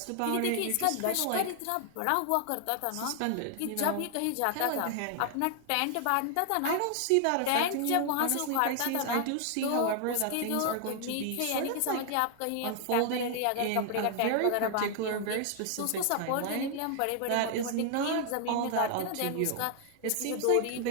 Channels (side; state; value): both; different; correlation 0.00